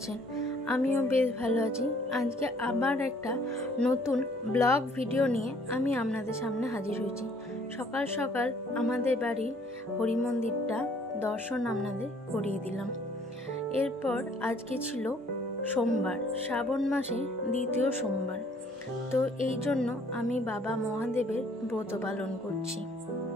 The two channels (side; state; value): both; normal; correlation 0.60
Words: আমিও বেশ ভালো আছি। আজকে আবার একটা নতুন ব্লগ ভিডিও নিয়ে আমি আপনাদের সামনে হাজির হয়েছি। সকাল সকাল আমাদের বাড়ির হরি মন্দিরটা দর্শন আপনাদের করিয়ে দিলাম। এরপর আজকে ছিল সোমবার, শ্রাবণ মাসে দ্বিতীয় সোমবার। তো এই জন্য আমি বাবা মহাদেবের ব্রত পালন করছি।